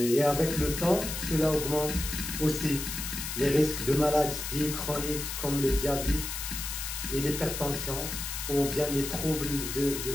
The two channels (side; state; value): left; noise; hiss, 5 dB below the sound